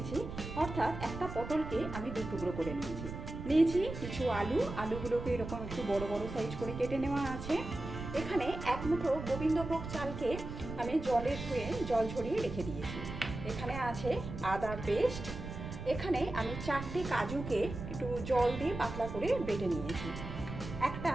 অর্থাৎ একটা পটলকে আমি দু টুকরো করে নিয়েছি কিছু আলুগুলোকে এরকম একটু বড় বড় সাইজ করে কেটে নেওয়া আছে। এখানে এক মুঠো গোবিন্দভোগ চালকে আমি জলে ধুয়ে জল ঝরিয়ে রেখে দিয়েছি। এখানে আছে আদার পেস্ট। এখানে আমি 4টে কাজুকে একটু জল দিয়ে পাতলা করে বেটে নিয়েছি। একটা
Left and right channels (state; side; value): noise; right; rumble, 8 dB below the sound